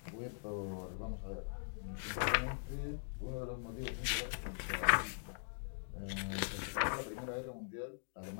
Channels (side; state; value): right; silent; digital silence